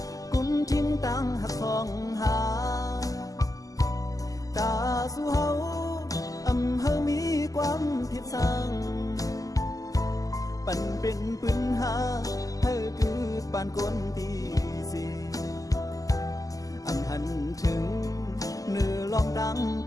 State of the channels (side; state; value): right; late; 0.17 ms